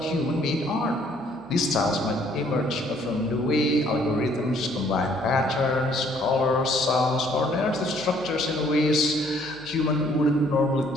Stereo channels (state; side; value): normal; both; correlation 0.62